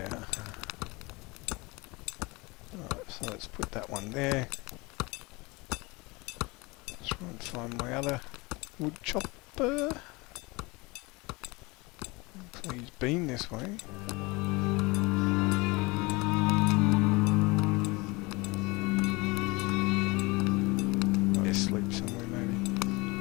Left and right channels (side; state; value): right; quieter; 25.0 dB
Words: are. Alright, so let's put that one there. Try and find my other wood chopper. Hopefully he's been this way. Might be asleep somewhere maybe.